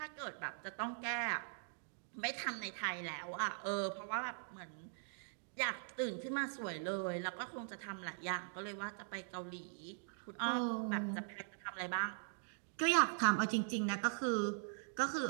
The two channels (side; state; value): left; silent; digital silence